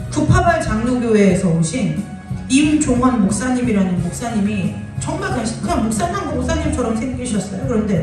구파발 장로교회에서 오신 임종환 목사님이라는 목사님이 정말 그냥 목사님처럼 생기셨어요.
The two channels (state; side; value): identical; both; correlation 1.00